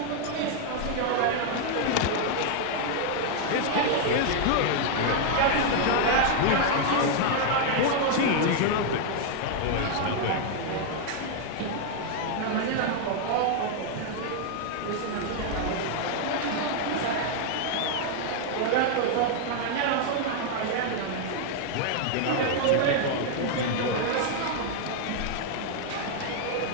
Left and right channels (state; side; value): different; both; correlation 0.00